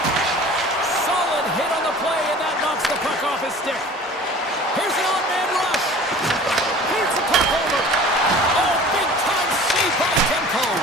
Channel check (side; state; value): both; normal; correlation 0.44